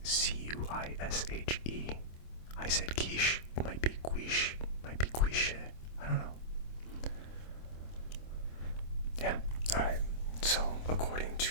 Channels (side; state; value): right; late; 26 ms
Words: Cuishe. I said quiche. It might be quiche. It might be quiche. I don't know. Yeah. Alright. So, according to